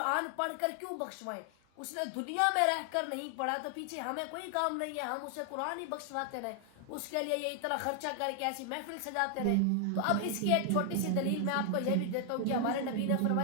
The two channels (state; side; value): different; both; correlation 0.00